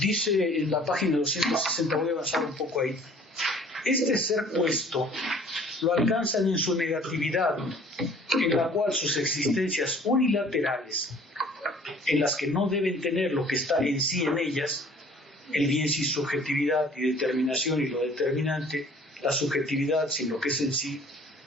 en la página 260, voy a avanzar un poco ahí, este ser puesto lo alcanzan en su negatividad, en la cual sus existencias unilaterales en las que no deben tener lo que está en sí en ellas, el bien sin subjetividad y determinación y lo determinante, la subjetividad sin lo que es en sí,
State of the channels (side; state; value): both; normal; correlation 0.52